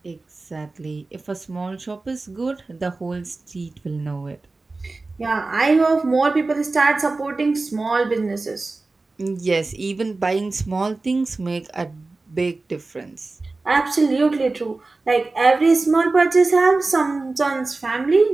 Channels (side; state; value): left; quieter; 3.5 dB